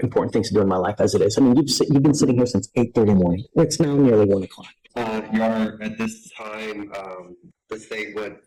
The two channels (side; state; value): both; identical; correlation 1.00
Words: important things to do in my life as it is. I mean, you've been sitting here since 8:30 in the morning. It's now nearly 1 o'clock. Your Honor, at this time, the state wouldn't